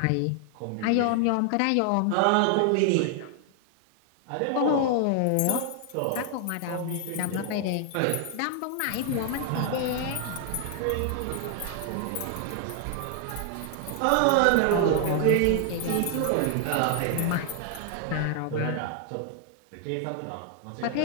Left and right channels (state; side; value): different; both; correlation 0.00